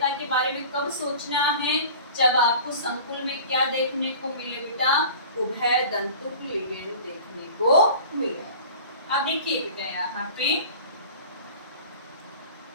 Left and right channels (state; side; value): inverted; both; correlation -0.41